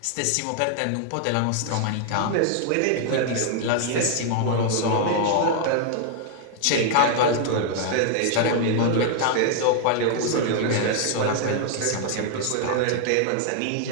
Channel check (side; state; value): both; different; correlation 0.00